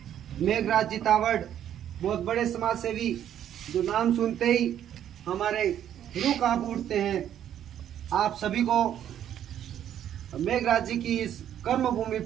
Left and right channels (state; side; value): quieter; left; 10.4 dB